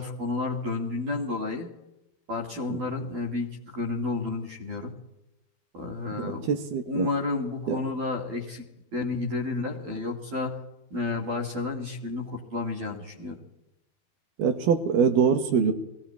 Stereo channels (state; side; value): late; left; 12 ms